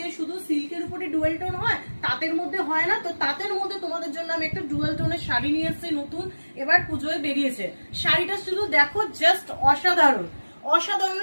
শুধু সিল্কের উপরে ডুয়াল টোন হয়, তাঁতের মধ্যে হয় না। তো তাঁতের মধ্যে তোমাদের জন্য আমি একটা ডুয়াল টোনের শাড়ি নিয়ে এসেছি নতুন, এবার পুজোয় বেরিয়েছে। শাড়িটা শুধু দেখো, জাস্ট অসাধারণ অসাধারণ।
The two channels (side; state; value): both; inverted; correlation -1.00